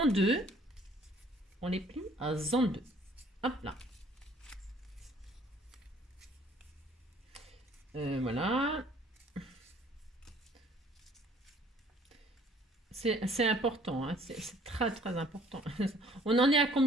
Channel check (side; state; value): both; normal; correlation 0.58